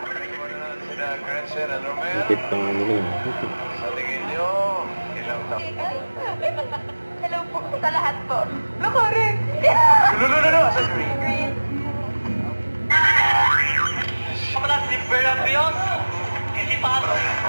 Higit pa nga nila yun. Sa tingin nyo, ilang taon? Hello po sa lahat po. No, correct. No, sa green. Kapala si Verabios, hindi pa ako.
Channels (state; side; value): inverted; both; correlation -1.00